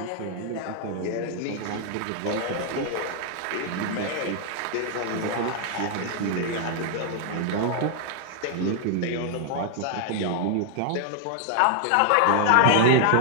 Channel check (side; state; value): both; different; correlation 0.00